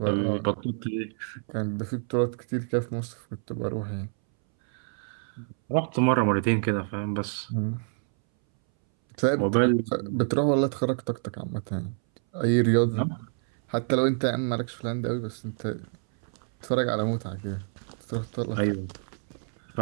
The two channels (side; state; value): left; silent; 60 dB below the other